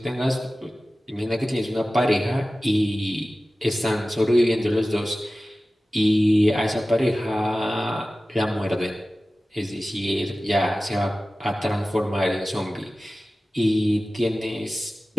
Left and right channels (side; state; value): both; normal; correlation 0.96